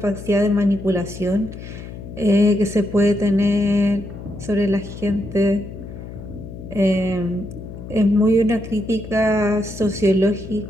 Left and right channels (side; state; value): left; noise; hum, 12 dB below the sound